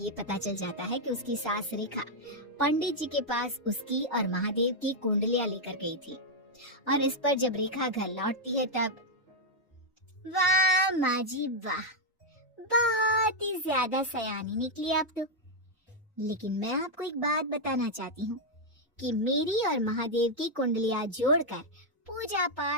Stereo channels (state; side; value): normal; both; correlation -0.01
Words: पता चल जाता है कि उसकी सास रेखा पंडित जी के पास उसकी और महादेव की कुंडलियां लेकर गई थी, और इस पर जब रेखा घर लौटती है तब वाह माँ जी वाह, बहुत ही ज्यादा सयानी निकली आप तो। लेकिन मैं आपको एक बात बताना चाहती हूँ कि मेरी और महादेव की कुंडलियां जोड़कर पूजा